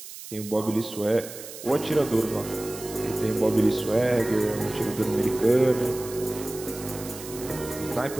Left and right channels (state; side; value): noise; right; hiss, 13 dB below the sound